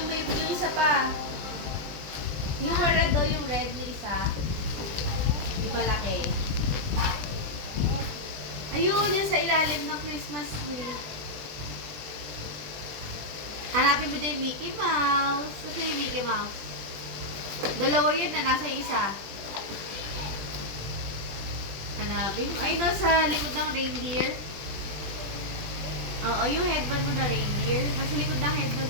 may yung isa pa. Yung red do, yung red na isa. Yung malaki. Ayun, yan sa ilalim ng Christmas tree. Hanapin mo dyan yung Mickey Mouse. Ito yung Mickey Mouse. Dalawa yun na nasa isa. Hanapin mo. Ay, nasa likod ng reindeer. Oo, yung headband mo na reindeer. Nasa likod ng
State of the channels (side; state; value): left; late; 20 ms